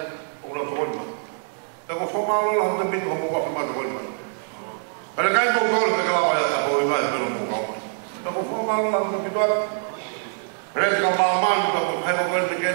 o lo tonga. Ko fomalo la de bit ko mo wa ma do ma. Pero kai ko ko ke la ya ko ma pero mo ko. Ko fomalo la de bit wa. Res ka ma ma ko ko ko de ke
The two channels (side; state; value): left; silent; digital silence